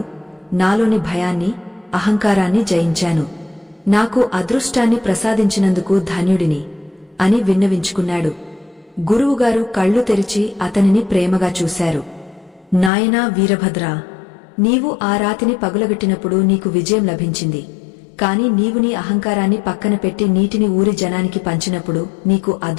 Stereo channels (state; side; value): drops out; right; at 12.9 s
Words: నాలోని భయాన్ని, అహంకారాన్ని జయించాను. నాకు అదృష్టాన్ని ప్రసాదించినందుకు ధన్యుడిని అని విన్నవించుకున్నాడు. గురువుగారు కళ్ళు తెరిచి అతనిని ప్రేమగా చూశారు. నాయనా వీరభద్రా, నీవు ఆ రాతిని పగులగొట్టినప్పుడు నీకు విజయం లభించింది. కాని నీవు నీ అహంకారాన్ని పక్కన పెట్టి నీటిని ఊరి జనానికి పంచినప్పుడు నీకు